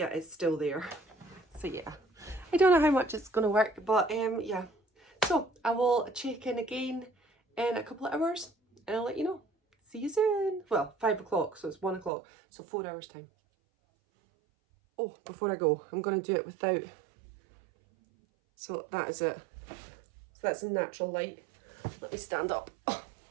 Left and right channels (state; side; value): drops out; left; at 12.1 s